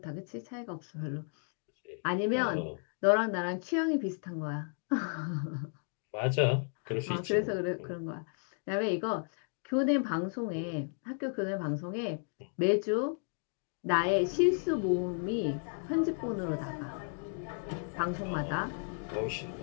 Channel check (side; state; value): right; silent; 55 dB below the other